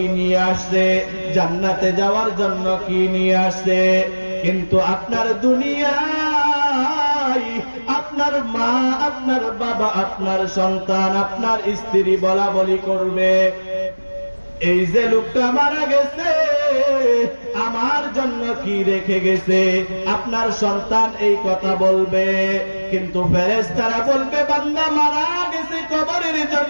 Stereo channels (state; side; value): inverted; both; correlation -1.00